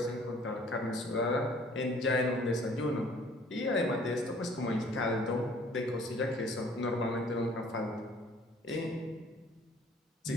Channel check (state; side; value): normal; both; correlation 0.55